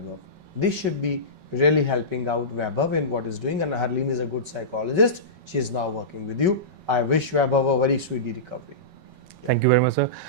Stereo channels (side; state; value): left; late; 5.3 ms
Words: This should be really helping out Vaibhav in what is doing, and Harleen is a good psychologist. She is now working with you. I wish Vaibhav a very speedy recovery. Thank you very much, sir.